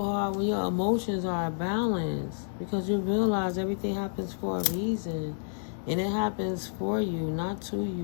hard when your emotions are balanced. Because you realize everything happens for a reason. And it happens for you, not to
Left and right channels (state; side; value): silent; right; 58 dB below the other